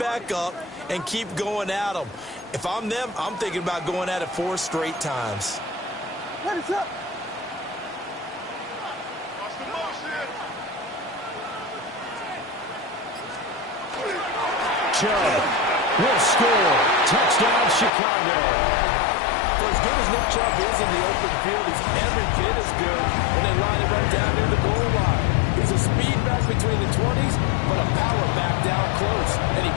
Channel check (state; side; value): drops out; right; at 17.9 s